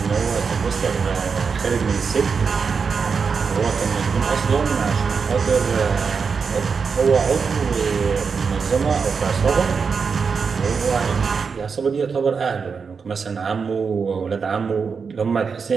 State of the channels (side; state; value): left; quieter; 5.6 dB